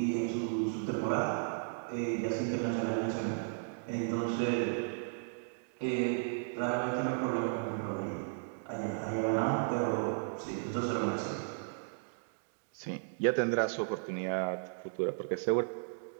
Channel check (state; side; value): silent; left; digital silence